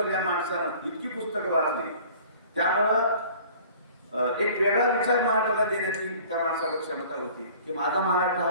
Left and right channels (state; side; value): inverted; both; correlation -0.49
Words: या माणसानं इतकी पुस्तकं वाचली, त्यामुळं एक वेगळा विचार महाराष्ट्राला देण्याची त्या माणसाला क्षमता होती की माझा महाराष्ट्र हा